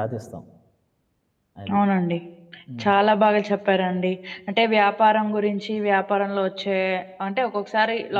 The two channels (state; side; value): identical; both; correlation 1.00